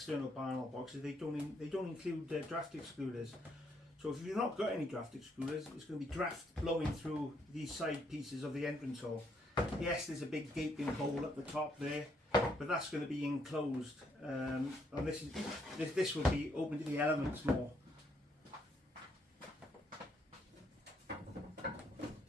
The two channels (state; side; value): normal; both; correlation 0.73